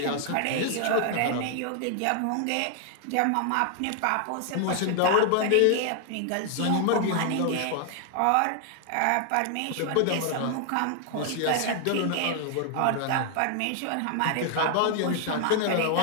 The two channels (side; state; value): both; different; correlation 0.00